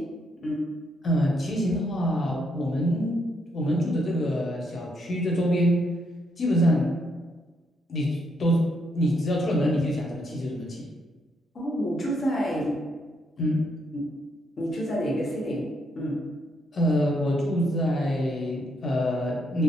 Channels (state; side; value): normal; both; correlation 0.75